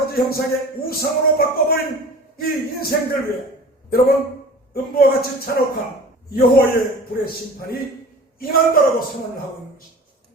형상의 우상으로 바꿔버린 이 인생들 위해 여러분, 음부와 같이 잔혹한 여호와의 불의 심판이 임한다라고 선언을 하고 있는 것입니다.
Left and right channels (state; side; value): normal; both; correlation 0.40